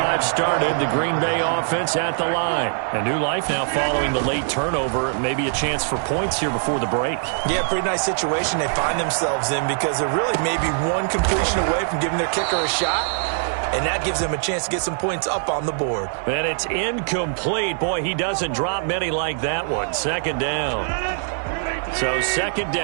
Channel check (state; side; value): silent; left; 58 dB below the other